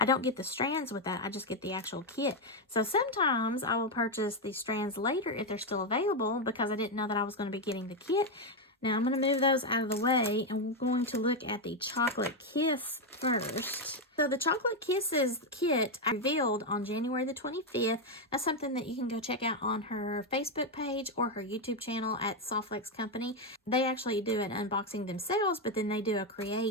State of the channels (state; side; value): normal; both; correlation 0.05